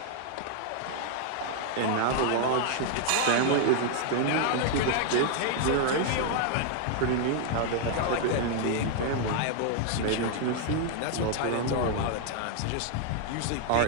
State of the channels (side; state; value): both; different; correlation 0.00